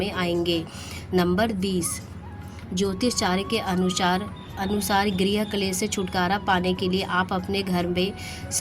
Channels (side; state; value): both; identical; correlation 1.00